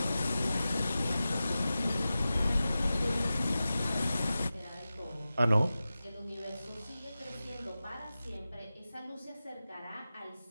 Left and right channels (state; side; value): inverted; both; correlation -0.94